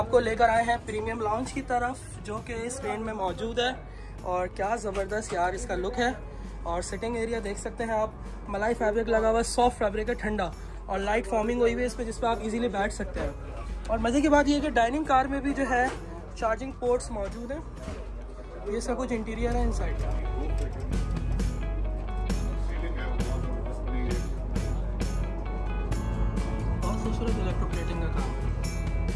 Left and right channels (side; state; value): both; identical; correlation 1.00